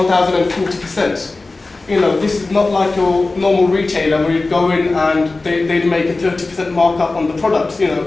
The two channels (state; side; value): quieter; right; 3.4 dB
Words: You know, this is not like your normal retailer where you go in and they'd make a 30% markup on the products. You